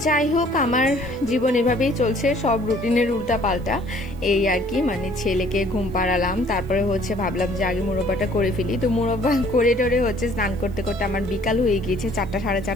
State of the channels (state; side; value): noise; right; hiss, 29 dB below the sound